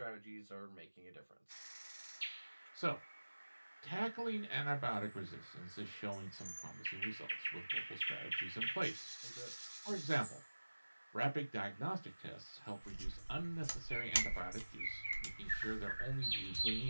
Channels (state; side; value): inverted; both; correlation -1.00